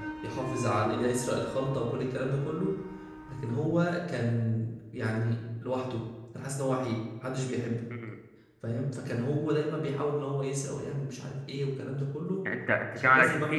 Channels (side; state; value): both; identical; correlation 1.00